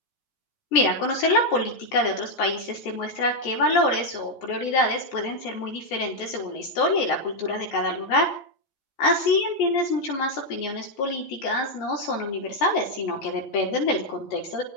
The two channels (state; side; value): late; right; 15 ms